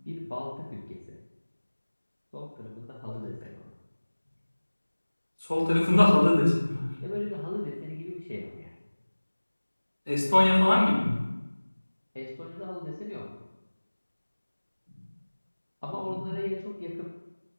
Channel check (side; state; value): both; inverted; correlation -1.00